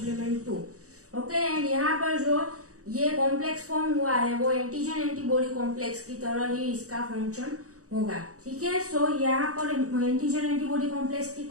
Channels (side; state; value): left; late; 0.65 ms